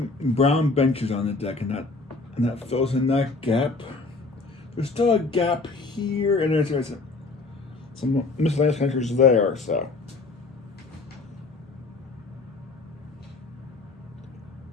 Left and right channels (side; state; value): right; quieter; 3.7 dB